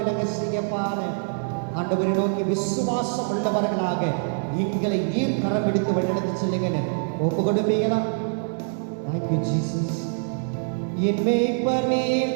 செய்யப்பான்னு ஆண்டவரை நோக்கி விசுவாசம் உள்ளவர்களாக எங்களை நீர் கரம் பிடித்து வழிநடத்தி செல்லுங்கன்னு ஒப்பு கொடுப்பீங்களா? Thank you Jesus. என் மேய்ப்பர்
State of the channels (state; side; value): silent; left; digital silence